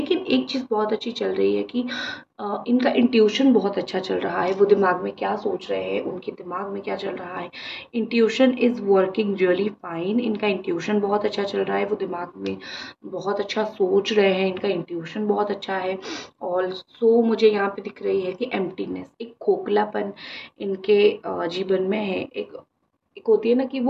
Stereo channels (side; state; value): both; identical; correlation 1.00